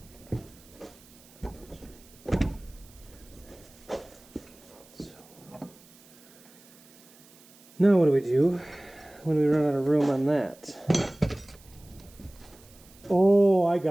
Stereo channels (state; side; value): noise; right; hiss, 25 dB below the sound